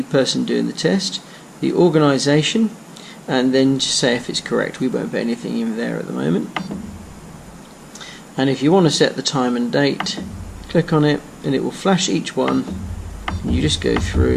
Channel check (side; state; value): both; identical; correlation 1.00